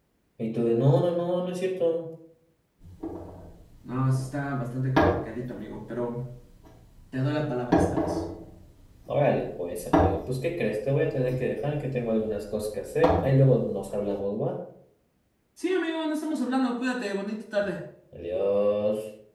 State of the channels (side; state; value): both; identical; correlation 1.00